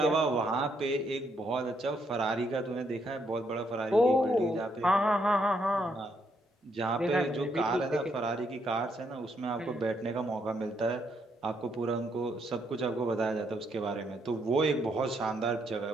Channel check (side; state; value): both; normal; correlation 0.75